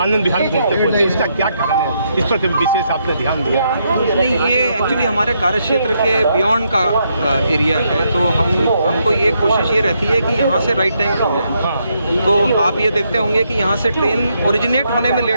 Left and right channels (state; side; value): inverted; both; correlation -0.77